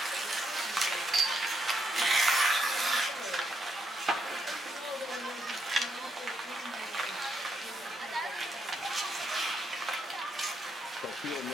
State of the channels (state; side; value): normal; both; correlation 0.78